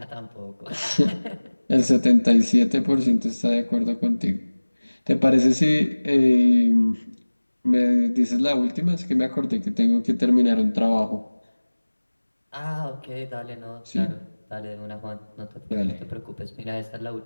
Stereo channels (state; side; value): inverted; both; correlation -1.00